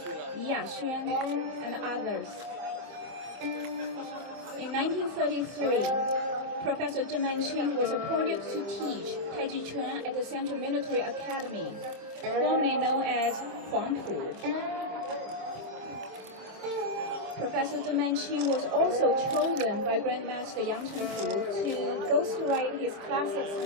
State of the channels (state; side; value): late; left; 26 ms